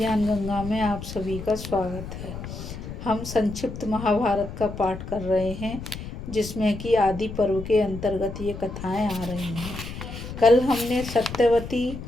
गंगा में आप सभी का स्वागत है। हम संक्षिप्त महाभारत का पाठ कर रहे हैं, जिसमें कि आदि पर्व के अंतर्गत ये कथाएं आ रही हैं। कल हमने सत्यवती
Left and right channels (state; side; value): noise; left; rumble, 9 dB below the sound